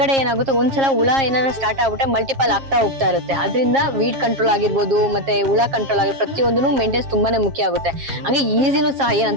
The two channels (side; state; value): left; late; 7.4 ms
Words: ಏನಾಗುತ್ತೆ, ಒಂದ್ಸಲ ಹುಳ ಏನಾದ್ರು ಸ್ಟಾರ್ಟ್ ಆಗ್ಬಿಟ್ರೆ ಮಲ್ಟಿಪಲ್ ಆಗ್ತಾ ಹೋಗ್ತಾ ಇರುತ್ತೆ. ಅದರಿಂದ ವೀಡ್ ಕಂಟ್ರೋಲ್ ಆಗಿರ್ಬೋದು, ಮತ್ತೆ ಹುಳ ಕಂಟ್ರೋಲ್ ಆಗಿರ್ಬೋದು, ಪ್ರತಿಯೊಂದೂ ಮೇಂಟೆನೆನ್ಸ್ ತುಂಬಾನೇ ಮುಖ್ಯ ಆಗುತ್ತೆ. ಹಂಗೆ ಈಸಿನೂ ಸಹ